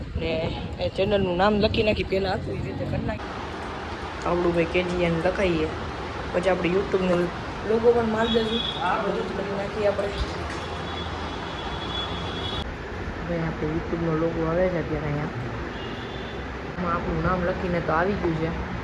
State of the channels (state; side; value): identical; both; correlation 1.00